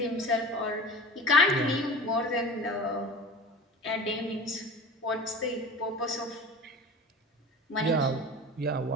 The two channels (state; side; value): normal; both; correlation 0.36